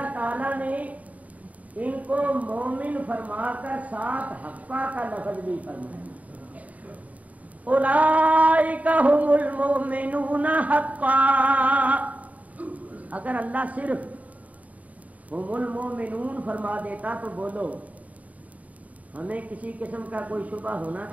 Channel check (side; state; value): left; late; 0.071 ms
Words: تعالیٰ نے ان کو مومن فرما کر ساتھ حقا کا لفظ بھی فرمایا. اولئک هم المؤمنون حقا. اگر اللہ صرف هم المؤمنون فرما دیتا تو بولو ہمیں کسی قسم کا کوئی شبہ ہونا